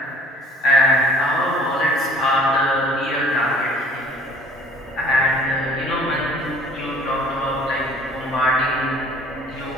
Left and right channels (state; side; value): normal; both; correlation 0.53